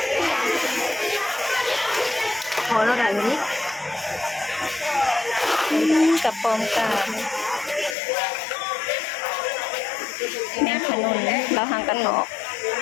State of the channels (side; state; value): right; drops out; at 8.0 s